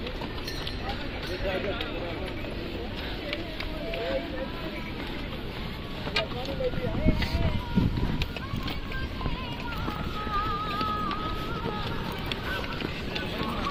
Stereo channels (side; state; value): both; identical; correlation 1.00